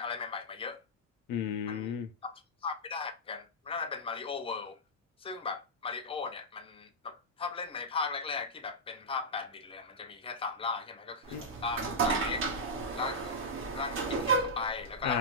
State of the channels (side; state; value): both; normal; correlation -0.11